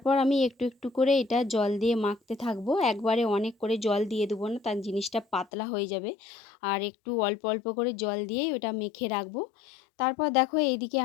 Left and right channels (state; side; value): drops out; right; at 5.5 s